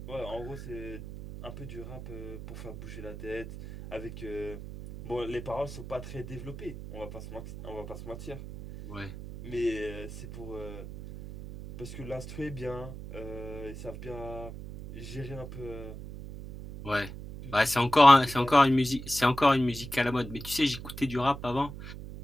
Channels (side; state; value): right; noise; hum, 11 dB below the sound